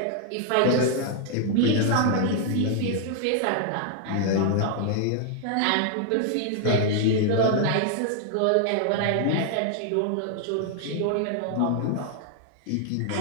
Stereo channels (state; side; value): different; both; correlation 0.00